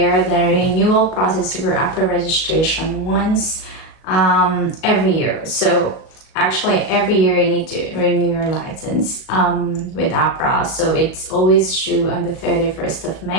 the renewal process for Ahpra registration once every year. So actually every year you need to renew your license with Ahpra. So it's always due on the 31st of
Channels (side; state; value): right; late; 37 ms